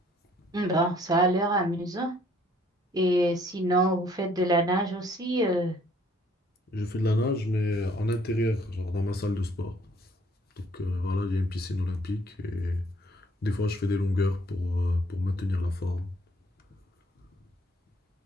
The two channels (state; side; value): normal; both; correlation 0.62